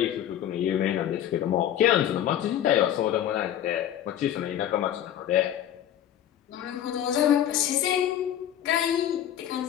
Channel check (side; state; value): right; quieter; 11.0 dB